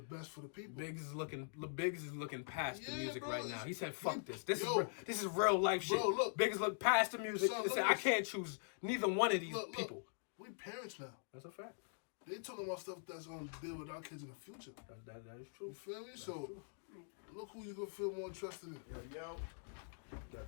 best for the people. Biggs is looking past the music bro, right now. He said, "Fuck this. This is real life shit." Bro, look, Biggs look past the music son, and said, "I can't choose neither one of these people." We parents now. That's a fact. They talking about stuff that's gonna deal with our kids in the future. That is true. You feel me? That's So true. look who you gonna feel more interested in. Yo.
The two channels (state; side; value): silent; right; digital silence